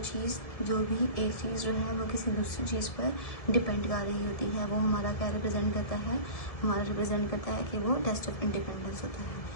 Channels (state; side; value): late; right; 1.7 ms